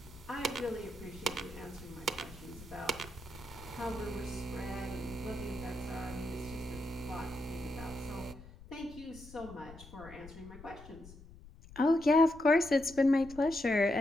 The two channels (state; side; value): noise; left; rumble, 17 dB below the sound